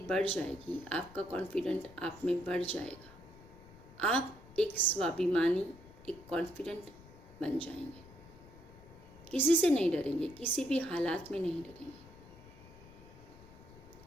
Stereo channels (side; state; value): left; noise; rumble, 21 dB below the sound